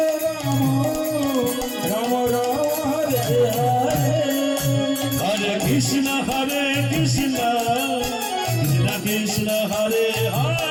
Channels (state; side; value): identical; both; correlation 1.00